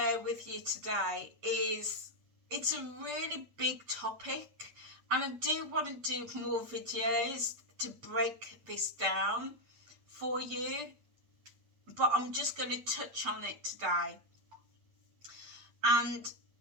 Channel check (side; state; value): left; late; 8.6 ms